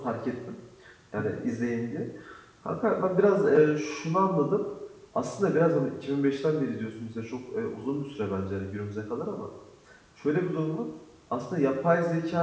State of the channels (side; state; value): both; identical; correlation 1.00